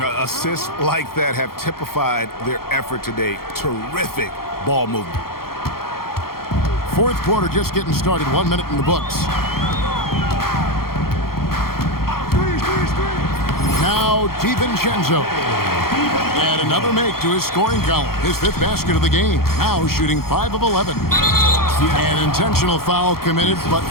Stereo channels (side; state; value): right; late; 0.93 ms